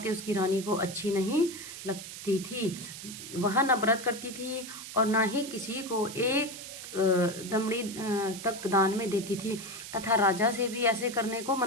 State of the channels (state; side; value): noise; right; hiss, 11 dB below the sound